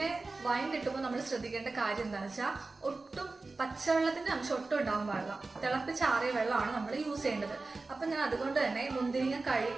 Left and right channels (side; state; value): left; quieter; 3.6 dB